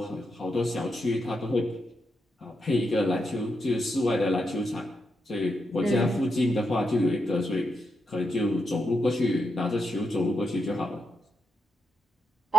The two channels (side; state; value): both; normal; correlation 0.83